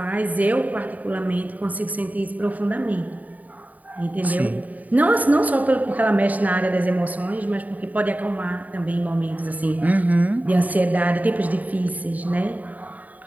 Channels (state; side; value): late; left; 0.074 ms